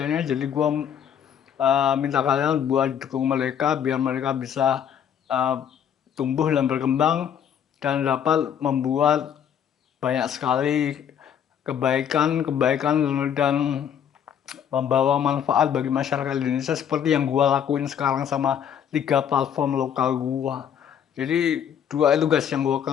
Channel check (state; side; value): quieter; right; 8.7 dB